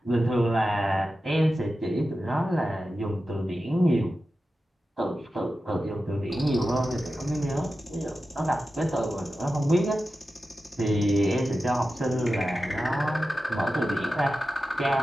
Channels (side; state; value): both; normal; correlation 0.92